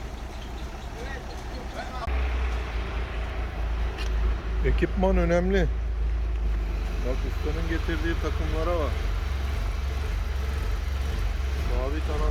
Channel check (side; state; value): both; identical; correlation 1.00